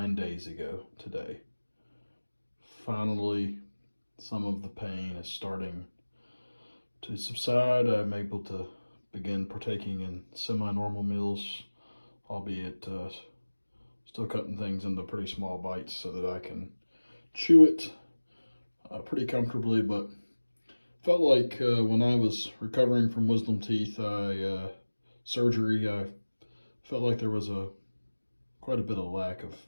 days ago today. Finally, some of the pain is starting to subside. I'm able to begin partaking in semi-normal meals, albeit still cutting things into pretty small bites so that I can chew it pretty comfortably, but felt like when I was recovering from wisdom teeth surgery, I felt like there was quite a bit of lack of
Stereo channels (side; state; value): both; inverted; correlation -1.00